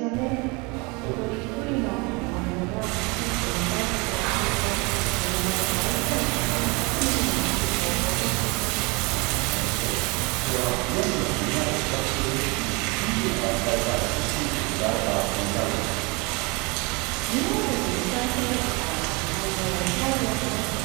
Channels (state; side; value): quieter; left; 27.9 dB